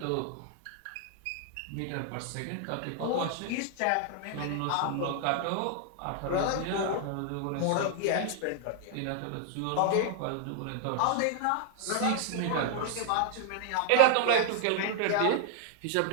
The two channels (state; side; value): different; both; correlation 0.00